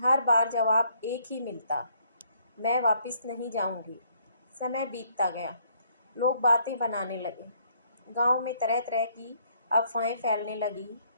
बार जवाब एक ही मिलता, मैं वापस नहीं जाऊंगी। समय बीतता गया, लोग बातें बनाने लगे, गांव में तरह तरह की अफवाहें फैलने लगी।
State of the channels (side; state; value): both; inverted; correlation -0.68